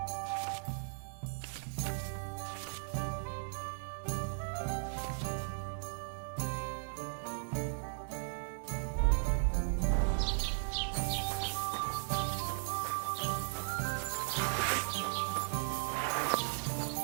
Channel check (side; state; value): left; silent; digital silence